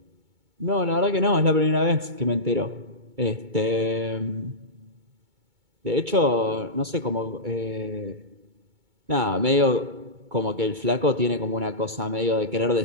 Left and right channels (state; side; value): late; left; 2.2 ms